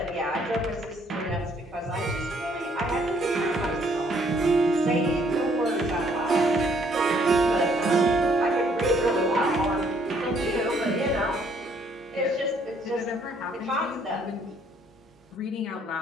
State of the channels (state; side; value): normal; both; correlation 0.65